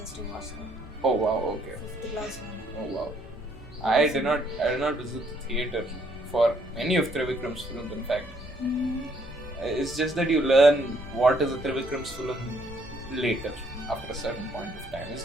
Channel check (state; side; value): normal; both; correlation 0.68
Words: just to watch them. Oh wow, okay. 5th class one. Oh wow. I did not visit the theatre for any of Trivikram's films, in fact. It's just that you learn what is a Trivikram's film later, after a certain point of time.